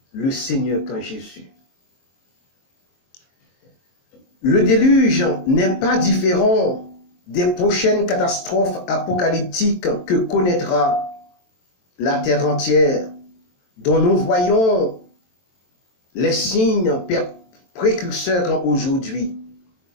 le Seigneur quand Jésus. Le déluge n'est pas différent des prochaines catastrophes apocalyptiques que connaîtra la terre entière, dont nous voyons les signes précurseurs aujourd'hui.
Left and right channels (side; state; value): right; late; 23 ms